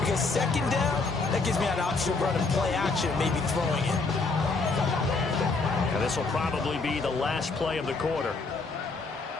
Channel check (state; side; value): quieter; right; 3.8 dB